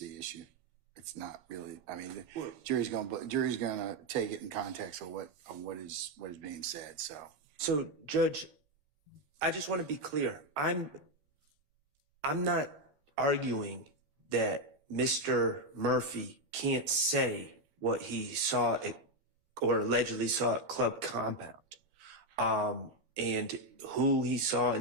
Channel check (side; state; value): left; late; 14 ms